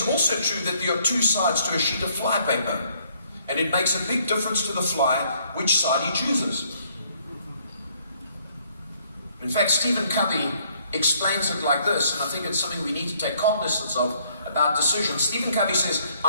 also true that there are two sides to a sheet of flypaper, and it makes a big difference to the fly which side he chooses. In fact, Stephen Covey explains it like this, and I think it's something we need to take cognizance of about decisions. Stephen Covey says,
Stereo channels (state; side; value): inverted; both; correlation -0.66